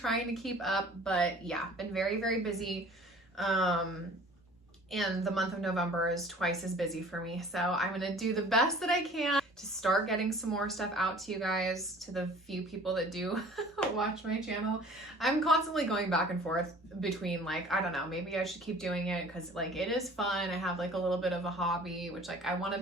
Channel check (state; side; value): normal; both; correlation 0.48